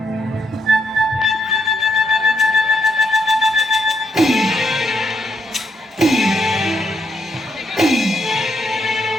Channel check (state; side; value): normal; both; correlation 0.77